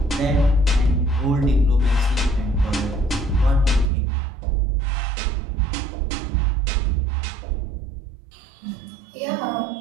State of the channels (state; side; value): drops out; left; at 3.9 s